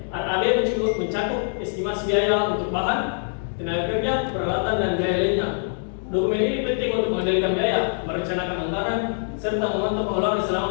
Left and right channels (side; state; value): right; silent; digital silence